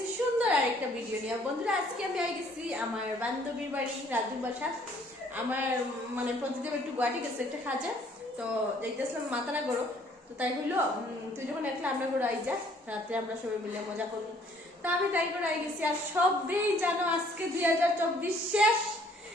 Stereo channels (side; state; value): both; normal; correlation 0.61